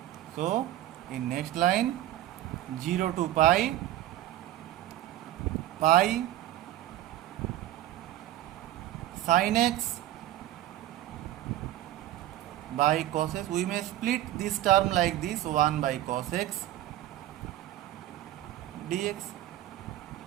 So in next line, 0 to pi pi sin x by cos x. We may split this term like this: 1 by cos x dx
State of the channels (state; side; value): quieter; left; 13.9 dB